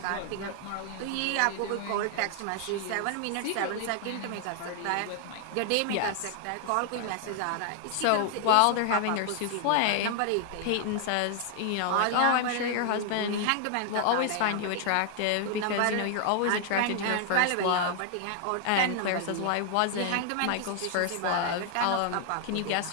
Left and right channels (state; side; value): different; both; correlation 0.00